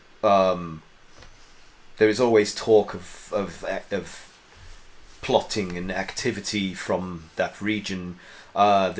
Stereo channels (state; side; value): identical; both; correlation 1.00